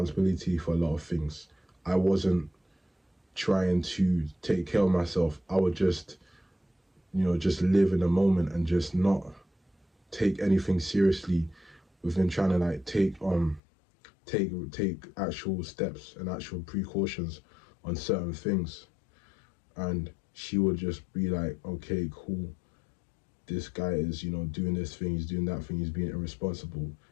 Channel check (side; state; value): right; drops out; at 13.6 s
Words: for a lot of things. I wasn't trying to take care of myself. I would just live in the moment and just not take anything seriously within trying to like take actual steps and actual precautions on certain things. And she would just be like, okay, cool, this guy is, doing this thing, he's doing that thing, he's being irresponsible.